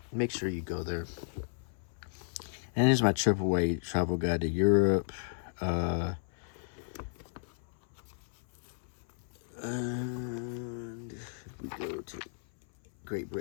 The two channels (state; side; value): silent; right; 55 dB below the other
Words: make sure you go there. And here's my AAA travel guide to Europe. And we go to Great